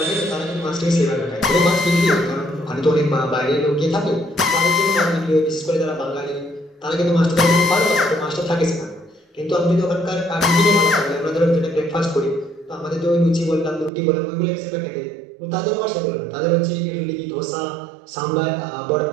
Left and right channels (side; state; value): left; drops out; at 13.9 s